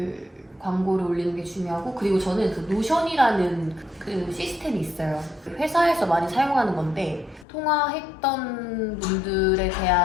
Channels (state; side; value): drops out; right; at 7.5 s